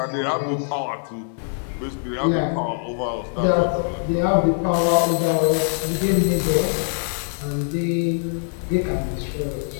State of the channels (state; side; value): silent; right; digital silence